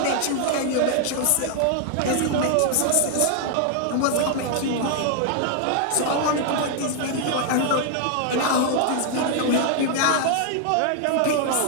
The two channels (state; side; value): different; both; correlation 0.00